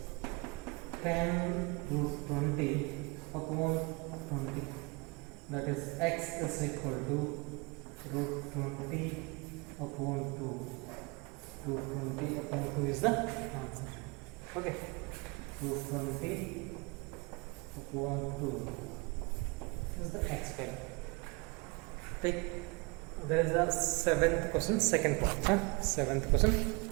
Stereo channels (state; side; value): quieter; left; 28.1 dB